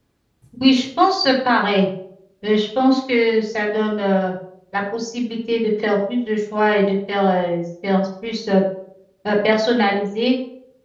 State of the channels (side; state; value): both; identical; correlation 1.00